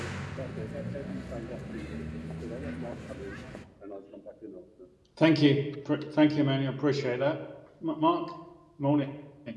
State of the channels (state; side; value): identical; both; correlation 1.00